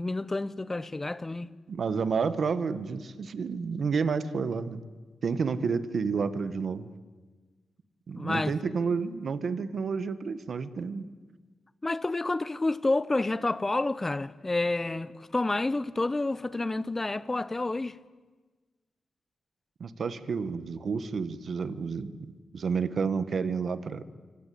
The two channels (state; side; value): normal; both; correlation 0.89